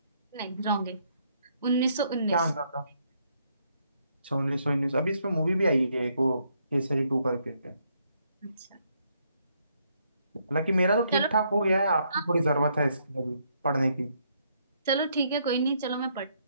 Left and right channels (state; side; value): inverted; both; correlation -0.73